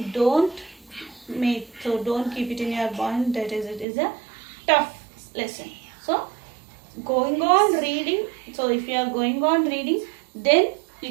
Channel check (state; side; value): drops out; left; at 3.9 s